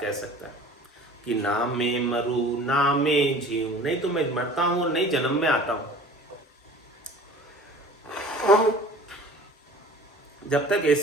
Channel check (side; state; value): both; normal; correlation 0.44